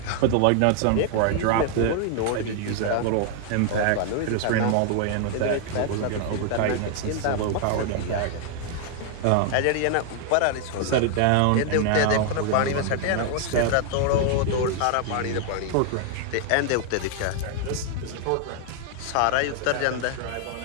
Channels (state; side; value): different; both; correlation 0.00